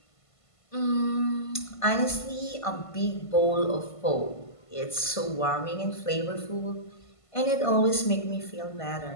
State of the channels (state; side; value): late; right; 1.5 ms